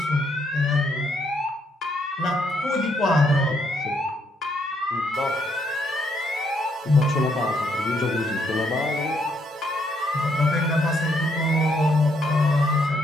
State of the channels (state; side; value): normal; both; correlation 0.73